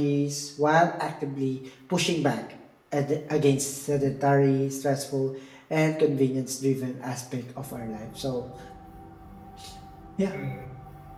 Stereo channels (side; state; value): both; identical; correlation 1.00